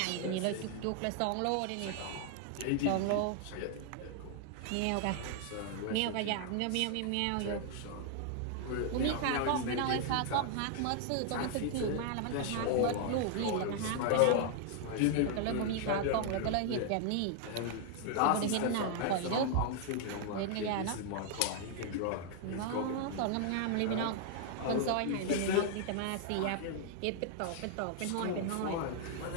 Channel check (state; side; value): different; both; correlation 0.00